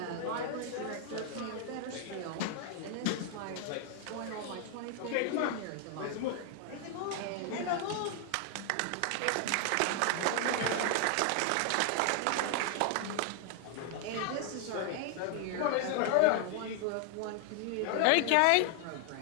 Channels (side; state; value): both; different; correlation 0.00